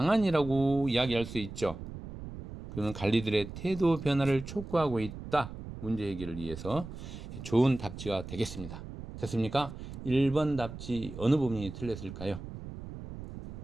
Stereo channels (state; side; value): noise; right; rumble, 11 dB below the sound